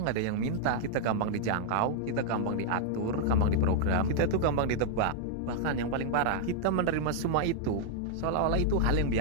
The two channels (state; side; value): different; both; correlation -0.01